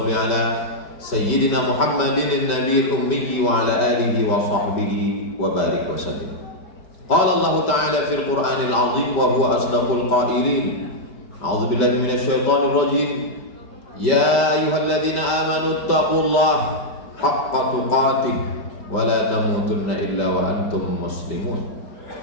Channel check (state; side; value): late; right; 5.2 ms